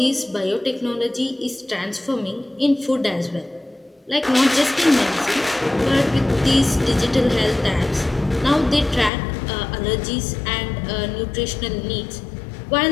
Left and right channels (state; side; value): drops out; right; at 9.1 s